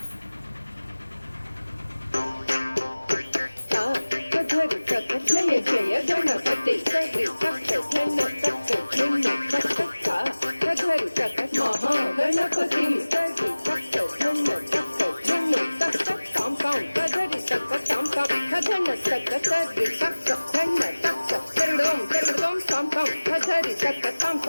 జయ జయ గణపతి సరి సప్త ధన సప్త ధిన్న సప్త కధరి సప్త మహాగణపతి సరి సప్త ధన సప్త ధిన్న సప్త కాం కాం కధరి సప్త కాం కాం కధన సప్త సరి సప్త ధన సప్త కరుడోం కరుడోం కాం కాం కధరి సప్త కాం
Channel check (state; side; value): inverted; both; correlation -1.00